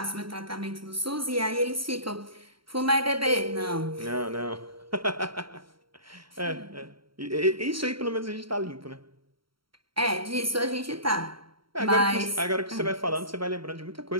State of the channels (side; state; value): left; late; 0.74 ms